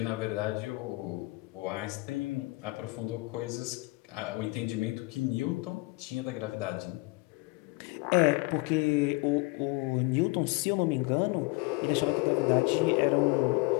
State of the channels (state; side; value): quieter; right; 24.6 dB